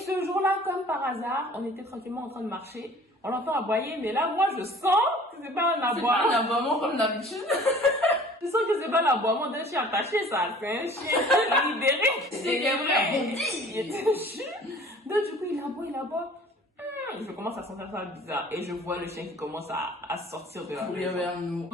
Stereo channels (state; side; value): normal; both; correlation 0.48